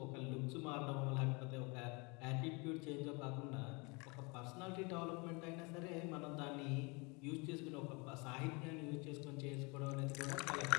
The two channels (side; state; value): right; quieter; 29.3 dB